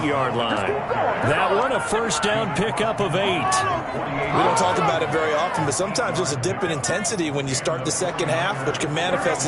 line. That one, a first down pickup of 8. We don't talk about it very often, but sometimes there's a dip in intensity when you start the second half, which can manifest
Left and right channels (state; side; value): identical; both; correlation 1.00